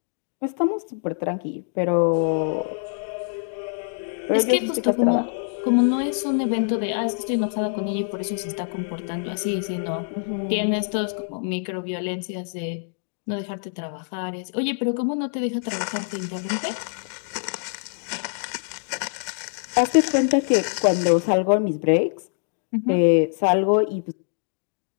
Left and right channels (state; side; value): silent; right; digital silence